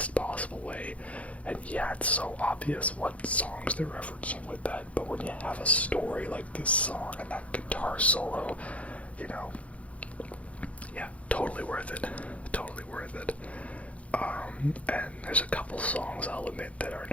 possible way. And yeah, it's so obvious what songs they're referencing with that, but when you have a story like this song and that guitar solo, yeah, totally worth it. Totally worth it. And there's a couple songs, I'll admit, that are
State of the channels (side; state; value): right; late; 0.065 ms